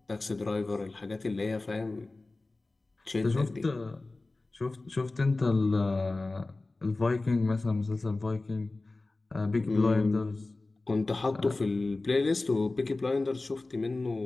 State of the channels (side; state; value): right; quieter; 3.2 dB